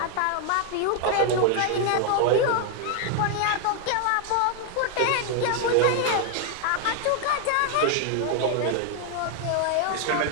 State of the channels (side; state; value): both; different; correlation 0.00